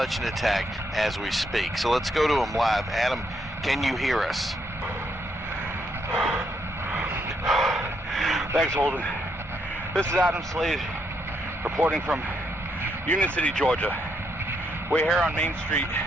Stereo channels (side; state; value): both; normal; correlation 0.76